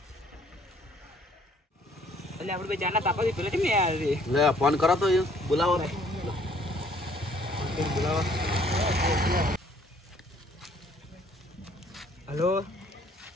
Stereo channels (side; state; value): both; normal; correlation 0.61